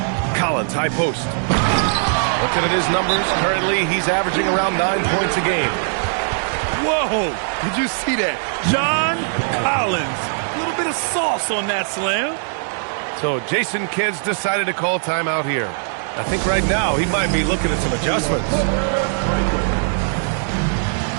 Collins, high post. Looking at his numbers, currently he's averaging around 9 points a game. Whoa! Did you see that? John Collins. A little bit of sauce on that slam. So Jason Kidd's decided to call timeout here. I think right now he might be looking at some adjustments.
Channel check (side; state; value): left; silent; digital silence